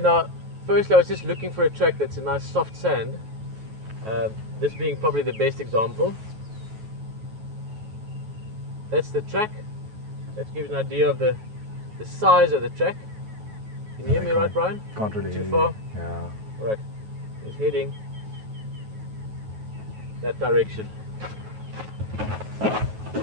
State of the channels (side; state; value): left; late; 9.3 ms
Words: now, firstly, I was just looking for a track that's a nice soft sand. This being probably the best example. That's the track. That gives an idea of the size of the track. Can you hear me right, Brian? Can't really hear Too far? you. Yeah. Right. He's heading that direction.